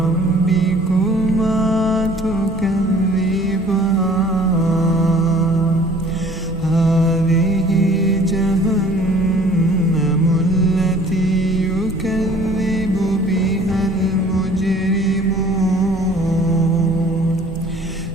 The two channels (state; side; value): normal; both; correlation 0.52